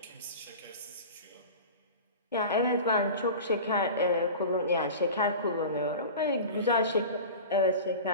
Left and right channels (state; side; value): inverted; both; correlation -0.34